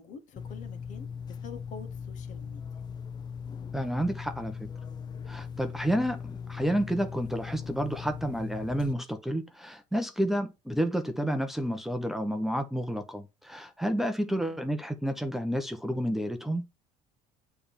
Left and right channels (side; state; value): both; normal; correlation 0.90